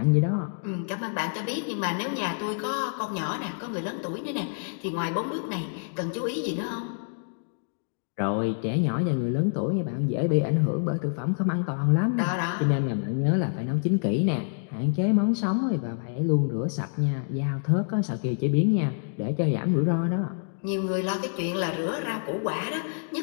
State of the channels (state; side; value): silent; right; digital silence